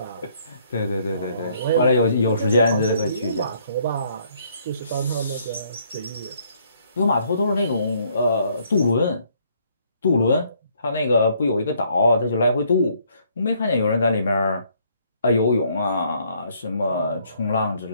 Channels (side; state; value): both; inverted; correlation -0.66